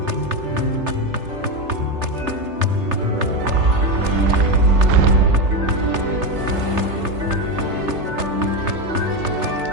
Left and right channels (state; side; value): late; left; 3.3 ms